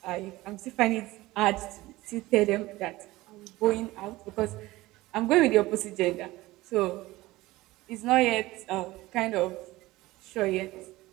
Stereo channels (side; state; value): left; quieter; 18.8 dB